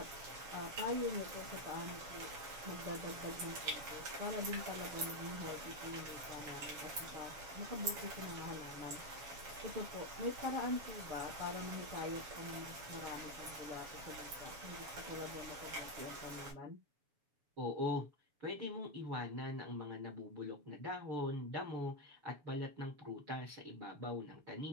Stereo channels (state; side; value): late; left; 7.0 ms